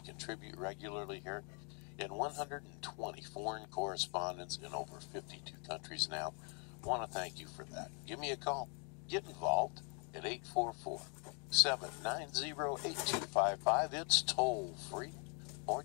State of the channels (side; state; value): right; quieter; 35.0 dB